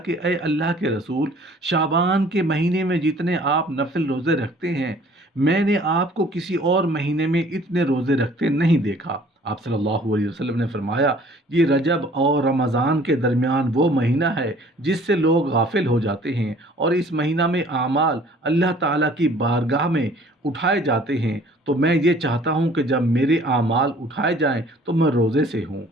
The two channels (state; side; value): normal; both; correlation 0.54